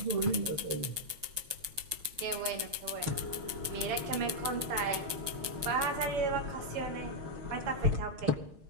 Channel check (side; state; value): left; late; 6.1 ms